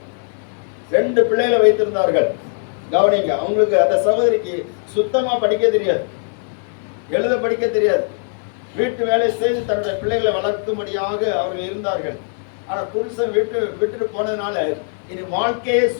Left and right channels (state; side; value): silent; right; 61 dB below the other